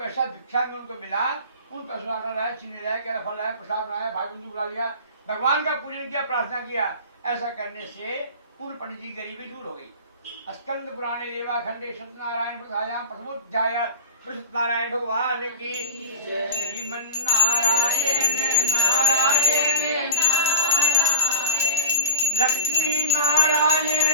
भिक्षा में उनको मिला उन पैसों आटा लाया, चीनी लाया, केला फल लाया, प्रसाद बनाया, भाई बंधु बुला लिया, भगवान का पूजन किया, प्रार्थना किया। ऐसा करने से उन पंडित जी गरीबी दूर हो गई। स्कंद पुराणे रेवा खंडे सत्यनारायण प्रसायाम प्रथमोध्याय सत्यनारायण भगवान की। श्रीमन नारायण नारायण लक्ष्मी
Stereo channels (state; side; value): inverted; both; correlation -0.37